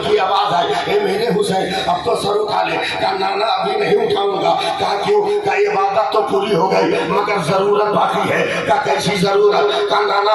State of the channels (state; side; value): identical; both; correlation 1.00